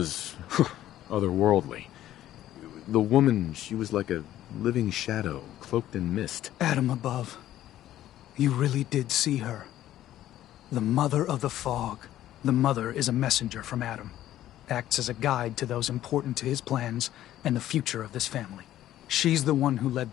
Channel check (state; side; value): quieter; right; 13.1 dB